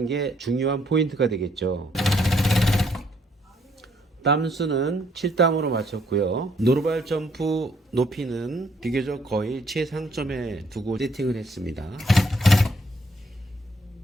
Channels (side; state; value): both; normal; correlation 0.68